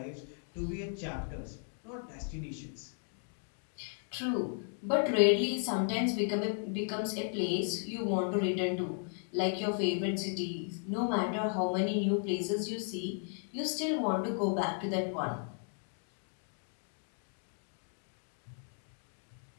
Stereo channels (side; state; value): right; silent; 54 dB below the other